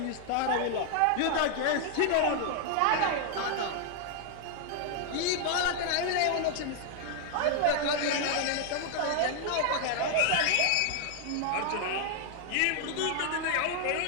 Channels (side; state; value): both; different; correlation 0.00